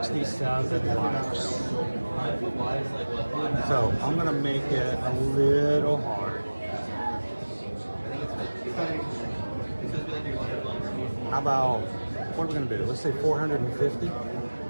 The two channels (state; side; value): inverted; both; correlation -1.00